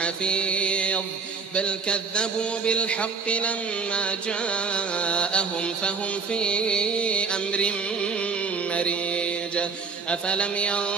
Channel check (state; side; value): quieter; left; 5.1 dB